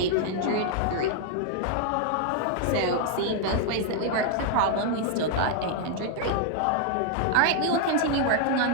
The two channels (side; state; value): both; different; correlation 0.00